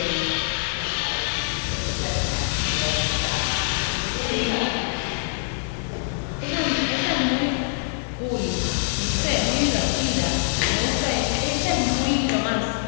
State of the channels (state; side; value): silent; right; 62 dB below the other